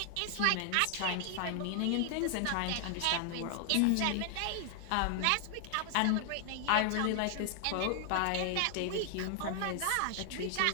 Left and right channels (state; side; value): different; both; correlation 0.00